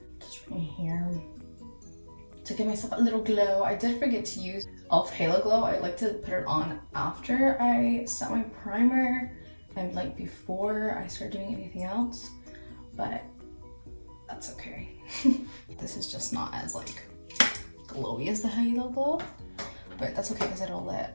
just right here to give myself a little glow. I did forget to use e.l.f. Halo Glow. I like to put it on after I set my primer and like before I start doing anything else, but that's okay. This is just not as like glowy as the Halo Glow, but that's okay because it'll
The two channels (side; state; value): both; inverted; correlation -1.00